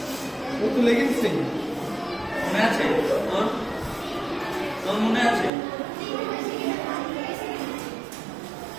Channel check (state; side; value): drops out; left; at 5.5 s